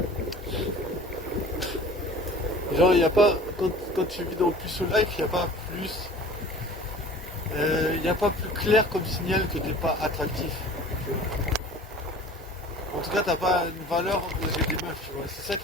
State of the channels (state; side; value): normal; both; correlation 0.44